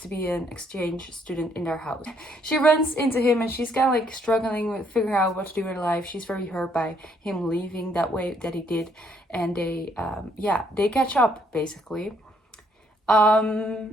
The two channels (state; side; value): normal; both; correlation 0.69